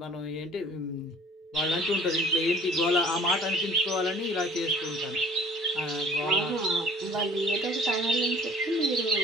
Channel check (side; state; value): both; normal; correlation 0.50